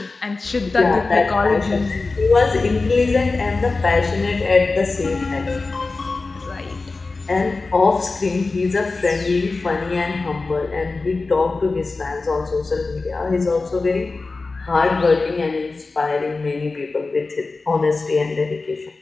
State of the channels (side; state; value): right; quieter; 3.7 dB